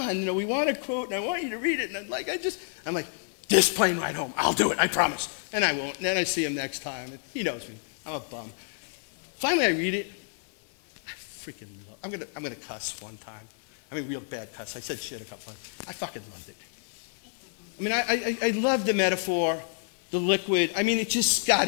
we want a quote, and I want you to read it, and I'm like, this plane ride home. I'll do it, I promise. And I won't. And then I see him next time. He knows me. I'm a bum. Finally, I read it. I freaking love it. I'm gonna cuss one time. I mean, real bad cuss. I said shit a couple times. I fucking loved it. I mean, I love the metaphor, the liquid. I mean, it just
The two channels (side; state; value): right; silent; 59 dB below the other